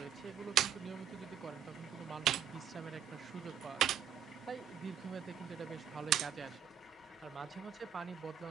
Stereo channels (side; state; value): left; quieter; 8.9 dB